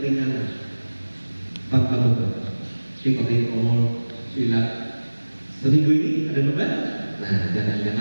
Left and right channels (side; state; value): both; inverted; correlation -1.00